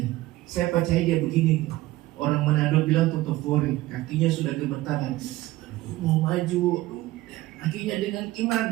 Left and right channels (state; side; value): quieter; left; 17.5 dB